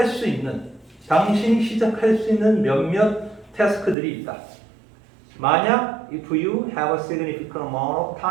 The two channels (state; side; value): drops out; left; at 4.0 s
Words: 수 있는, 당신이 시작할 수 있는 몇몇 태스크들이 있다. 만약 if you have a significant amount of